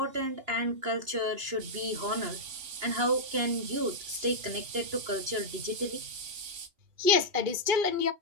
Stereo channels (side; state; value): left; late; 2.9 ms